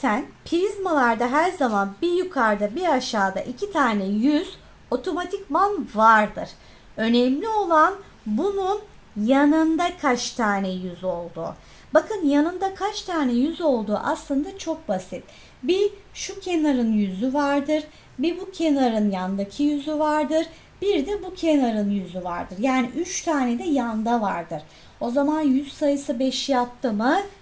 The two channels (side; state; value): both; identical; correlation 1.00